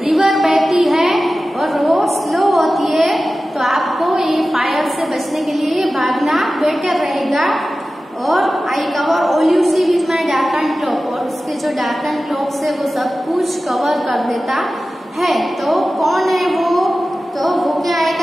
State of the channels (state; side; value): normal; both; correlation 0.95